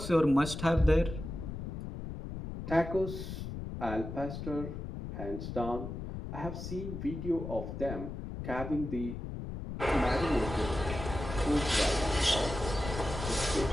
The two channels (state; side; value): noise; left; rumble, 7 dB below the sound